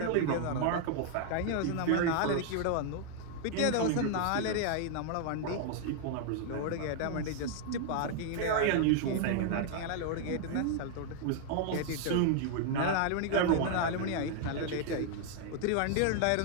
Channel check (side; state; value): both; different; correlation 0.00